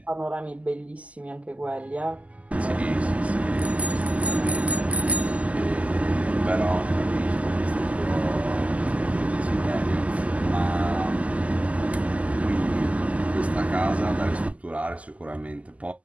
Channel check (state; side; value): late; left; 0.069 ms